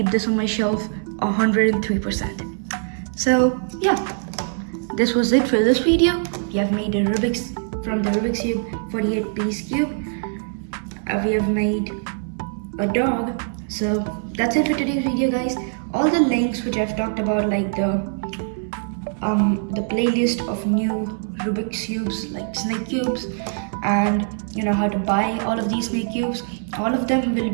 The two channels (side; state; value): left; silent; digital silence